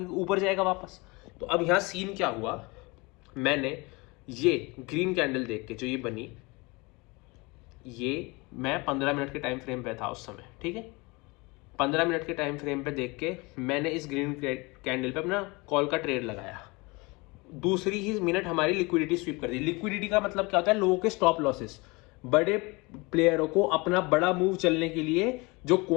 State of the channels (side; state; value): right; quieter; 25.8 dB